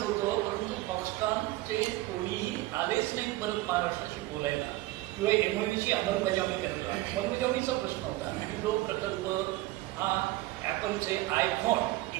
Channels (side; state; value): left; quieter; 18.0 dB